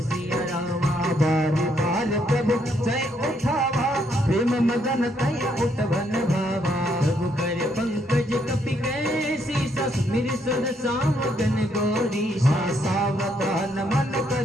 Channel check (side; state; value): both; normal; correlation 0.73